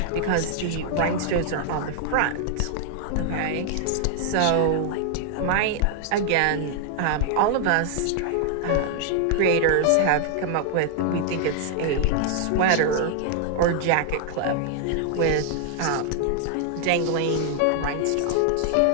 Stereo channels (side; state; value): both; different; correlation 0.00